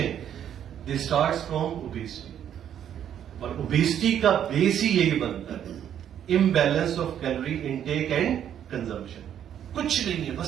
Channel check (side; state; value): left; quieter; 9.7 dB